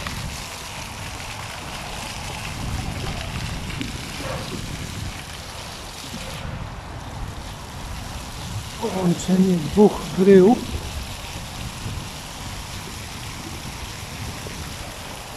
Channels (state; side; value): identical; both; correlation 1.00